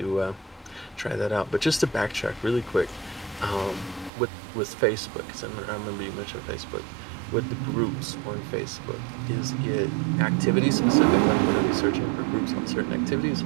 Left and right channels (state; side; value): drops out; left; at 4.1 s